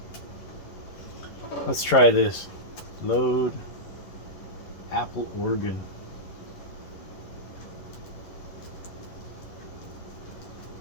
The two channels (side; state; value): right; late; 10 ms